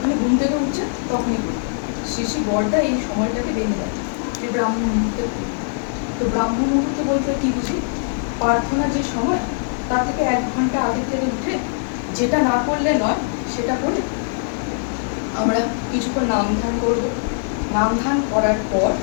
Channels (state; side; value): silent; right; digital silence